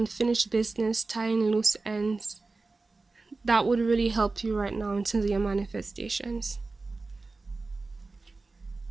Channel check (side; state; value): left; quieter; 3.6 dB